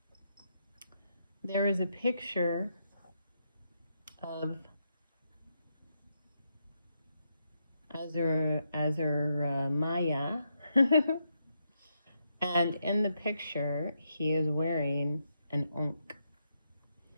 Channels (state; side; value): inverted; both; correlation -0.81